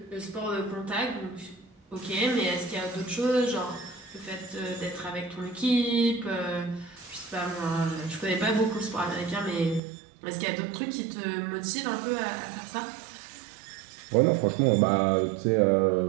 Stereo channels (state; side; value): drops out; left; at 9.8 s